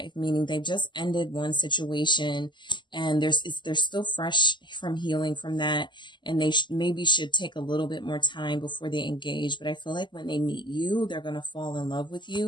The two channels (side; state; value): right; late; 0.22 ms